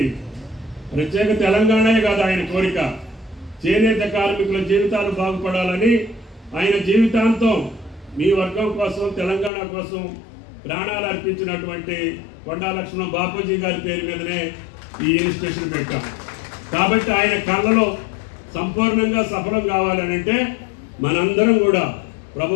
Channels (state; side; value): drops out; right; at 9.5 s